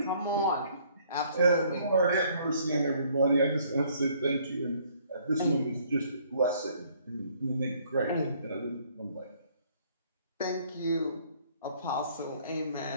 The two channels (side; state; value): both; inverted; correlation -0.62